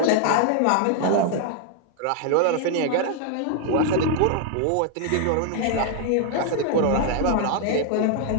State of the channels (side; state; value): both; different; correlation 0.00